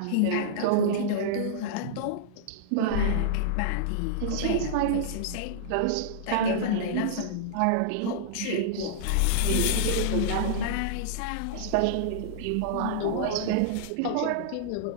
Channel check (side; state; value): both; different; correlation -0.02